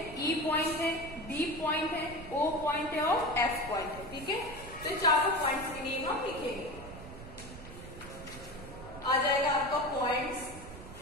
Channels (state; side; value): noise; right; rumble, 14 dB below the sound